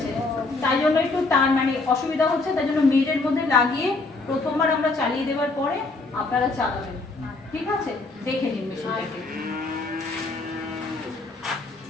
তাই জন্য একটু তার মানে অসুবিধা হচ্ছে, তাই জন্য মেজের মধ্যে লাগিয়ে প্রথমবার আমরা চালিয়ে দেওয়ার পরে আপনারা চালাবেন, ঠিক আছে? দেখে নিন মেশিনটাকে।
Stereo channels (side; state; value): right; quieter; 3.4 dB